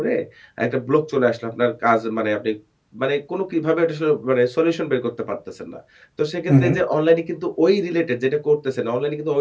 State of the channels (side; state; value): both; identical; correlation 1.00